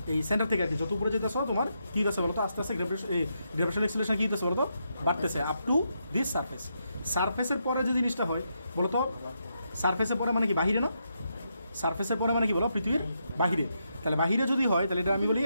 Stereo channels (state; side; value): inverted; both; correlation -0.81